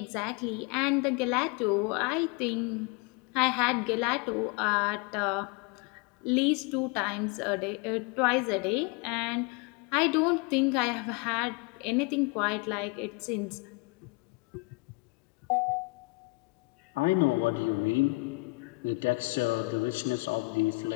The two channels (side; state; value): right; quieter; 26.1 dB